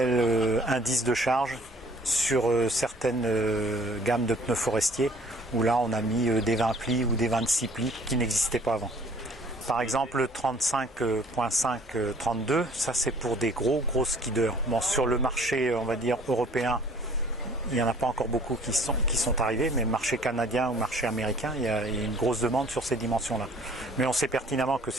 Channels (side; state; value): both; normal; correlation 0.55